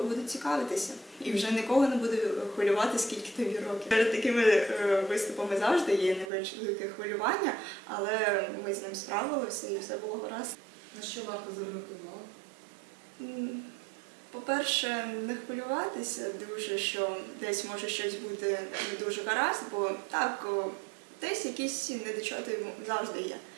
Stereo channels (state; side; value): drops out; left; at 6.3 s